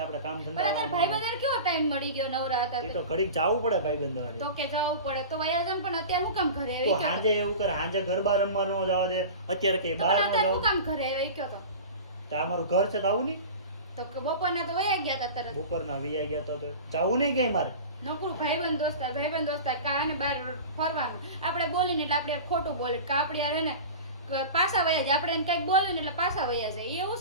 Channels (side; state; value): both; inverted; correlation -0.33